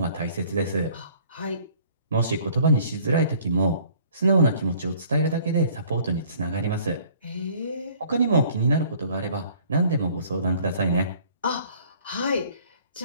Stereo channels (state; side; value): inverted; both; correlation -0.55